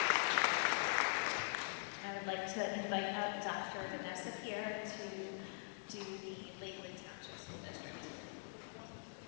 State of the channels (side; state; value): right; silent; digital silence